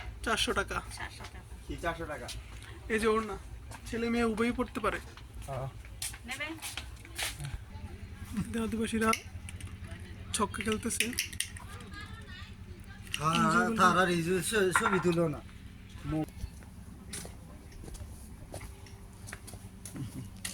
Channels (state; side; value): identical; both; correlation 1.00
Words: 400 টাকা। 700 টাকা কি 400 টাকা? এই যে ওর না, ছেলে মেয়ে উভয়ই পড়তে পারে। নেবেন? আদিবাসীরা ছক্কা খেলতেছে। তারা ছবি তুলো না।